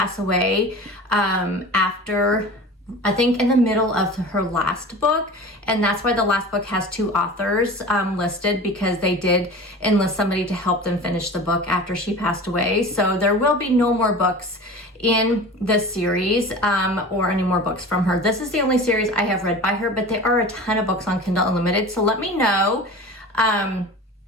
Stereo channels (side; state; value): both; normal; correlation 0.36